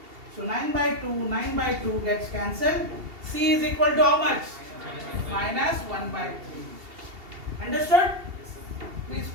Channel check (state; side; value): late; left; 2.7 ms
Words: So 9 by 2 gets cancelled. C is equal to how much? Minus 1 by 3. Understood? Please